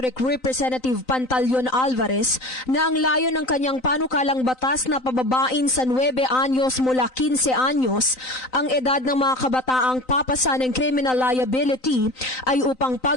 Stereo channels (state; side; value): late; right; 3.9 ms